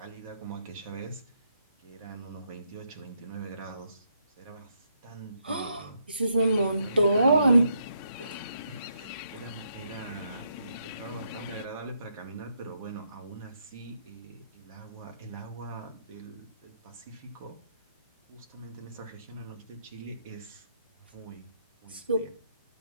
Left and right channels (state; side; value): inverted; both; correlation -0.76